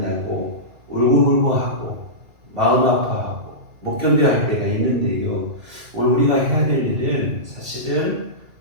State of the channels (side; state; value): left; late; 2.3 ms